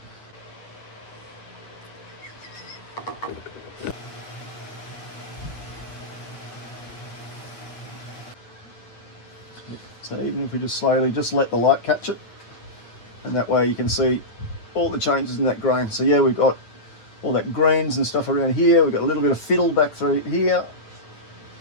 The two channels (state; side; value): late; right; 9.2 ms